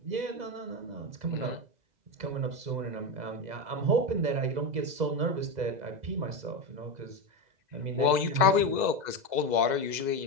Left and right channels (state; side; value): late; left; 2.0 ms